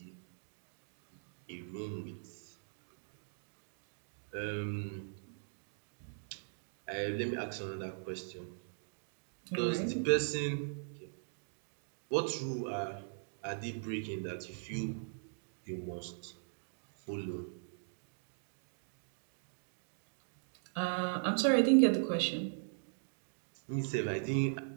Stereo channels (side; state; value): left; silent; digital silence